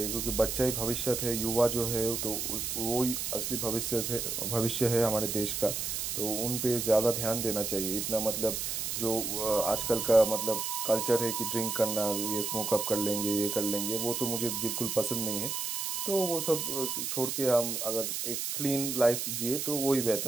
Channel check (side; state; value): right; noise; hiss, 2 dB below the sound